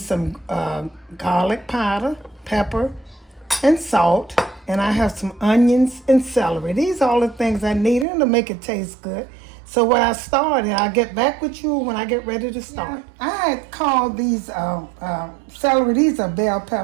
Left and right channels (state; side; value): drops out; left; at 8.1 s